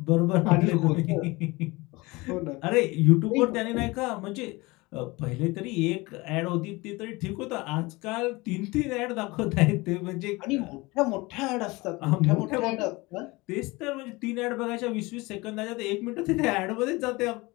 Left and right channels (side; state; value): right; quieter; 23.1 dB